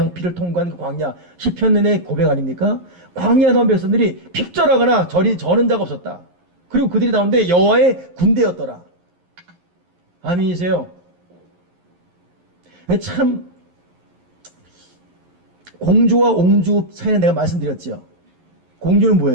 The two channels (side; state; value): left; late; 11 ms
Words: 피를 통과한 그 광야 시편의 고백 아닙니까? 광야 나온 백성들이 핍절하거나 저는 자가 없었다. 그리고 그들이 나오는데 여호와의 군대였더라. 아멘이세요? 참 공주와 옹주 사이에 내가 말씀드렸죠. 공주는